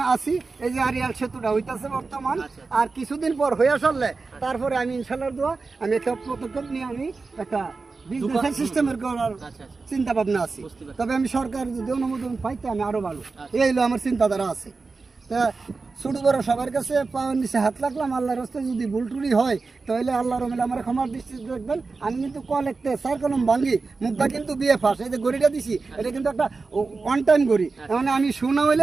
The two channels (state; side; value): quieter; left; 4.1 dB